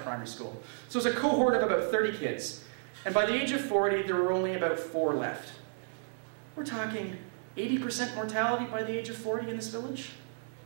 school. So it was a cohort of about 30 kids. And by the age of 40, there were only about 4 left. We're talking 80% mortality by the age of 40 in this village?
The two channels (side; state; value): left; silent; digital silence